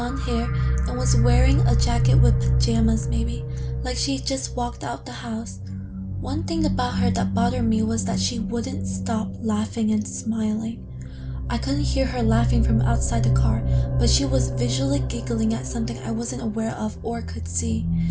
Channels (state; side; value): identical; both; correlation 1.00